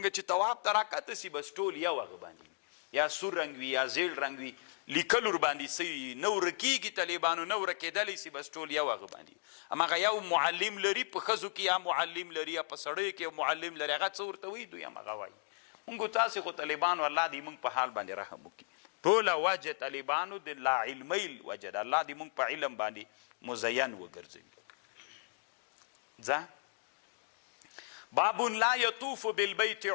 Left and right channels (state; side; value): silent; right; digital silence